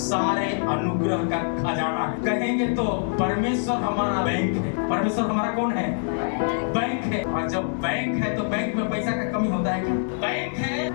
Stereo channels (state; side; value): silent; right; digital silence